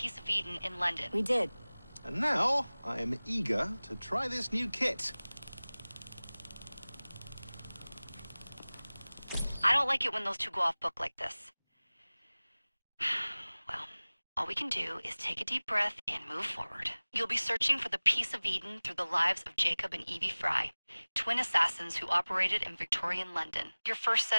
of Eden in London. We did. And now, I am eager to try this new kit. I don't like it when those two go off book like this. Well, all we can do is take a deep breath and move forward. You'll be searching for the piece of Eden through the lives of Jacob and Evie Fry, twin assassins who operated in Victorian London. Your first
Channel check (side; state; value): both; inverted; correlation -1.00